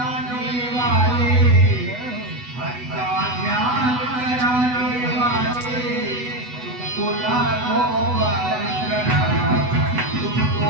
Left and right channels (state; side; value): late; left; 8.1 ms